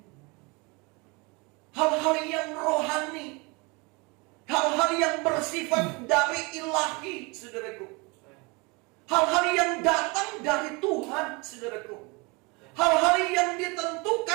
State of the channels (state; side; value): quieter; left; 28.0 dB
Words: Hal-hal yang rohani, hal-hal yang bersifat dari ilahi, saudaraku. Hal-hal yang datang dari Tuhan, saudaraku. Hal-hal yang